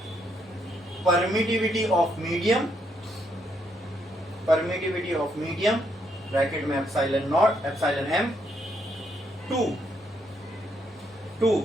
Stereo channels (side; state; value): both; normal; correlation 0.75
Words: permittivity of medium, permittivity of medium bracket में epsilon naught, epsilon m, to